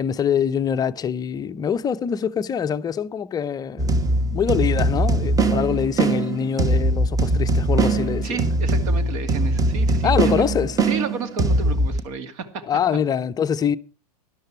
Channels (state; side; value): normal; both; correlation 0.54